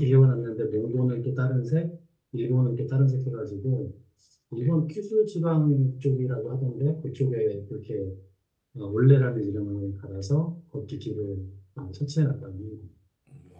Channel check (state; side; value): identical; both; correlation 1.00